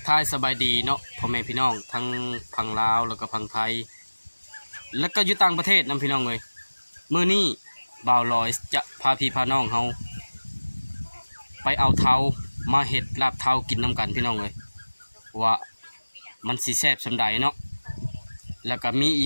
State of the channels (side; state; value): both; inverted; correlation -1.00